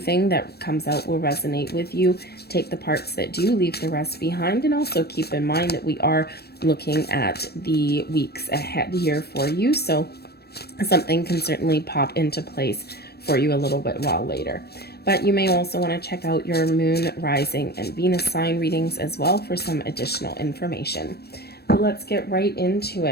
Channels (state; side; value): late; right; 0.47 ms